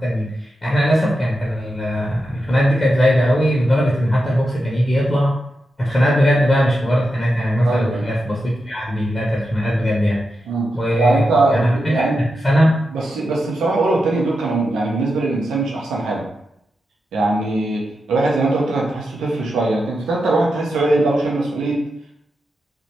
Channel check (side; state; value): both; normal; correlation 0.88